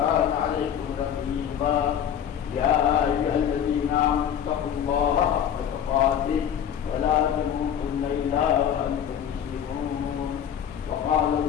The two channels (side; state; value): right; quieter; 9.1 dB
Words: عليكم رقيبا يا أيها الذين آمنوا اتقوا الله حق تقاته ولا تموتن إلا وأنتم مسلمون وقال